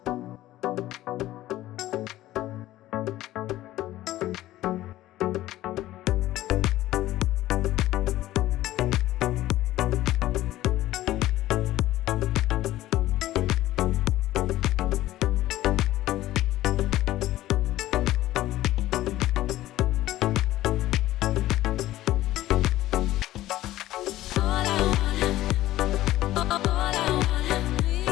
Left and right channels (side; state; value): right; quieter; 15.1 dB